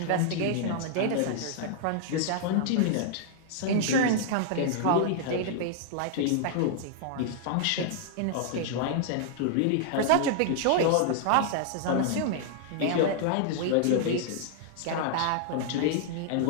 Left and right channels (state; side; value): different; both; correlation -0.01